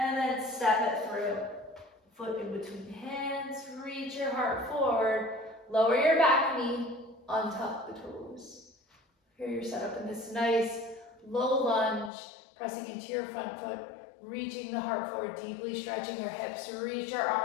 then step it through. Foot in between hands. Reach your heart forward. Lower your back knee, untuck the toes. Here you're set up in this nice low lunge, pressing into your front foot, reaching the heart forward, deeply stretching your hips. Reach your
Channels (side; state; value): right; drops out; at 12.1 s